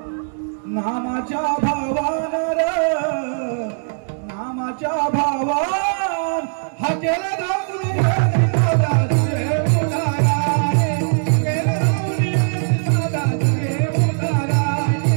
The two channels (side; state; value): left; silent; digital silence